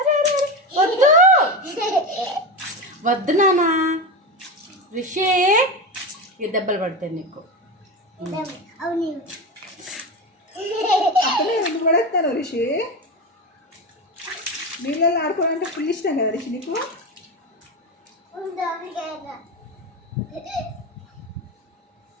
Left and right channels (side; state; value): both; normal; correlation 0.20